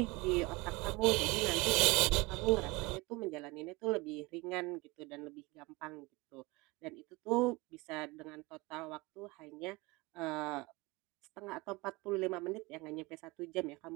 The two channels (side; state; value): left; quieter; 23.9 dB